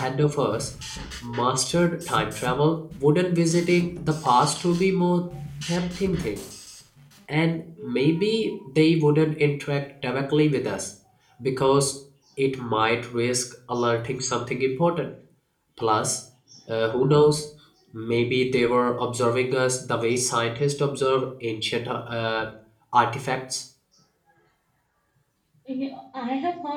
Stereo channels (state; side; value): identical; both; correlation 1.00